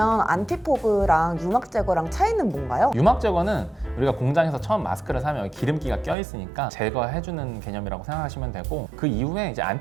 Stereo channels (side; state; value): left; drops out; at 6.2 s